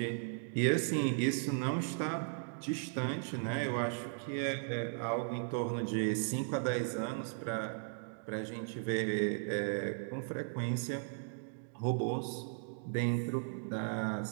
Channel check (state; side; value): silent; left; digital silence